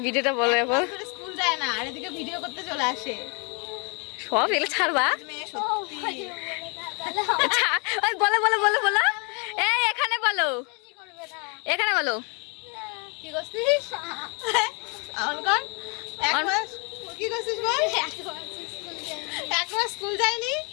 ভিডিওটা বলো এখন। স্কুল যায় না আর এদিকে ভিডিও করতে চলে আসে। সব এগুলো ছাড়বা। মেয়ে সত্যি। বলো বলো বলো বলো, এই এখানে বলো, এখানে বলো। কি করছিস? অন কর। এক মাস কি করছিস বল? এক মাস স্কুল যায়নি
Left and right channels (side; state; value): right; quieter; 34.3 dB